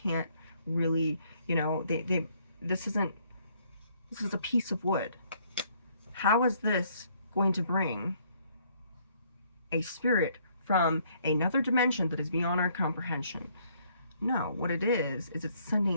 can't really, this is a piece of wood. How is this going to bring a spirit from another dimension that is beyond our comprehension? No, what it is it's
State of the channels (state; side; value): inverted; both; correlation -0.66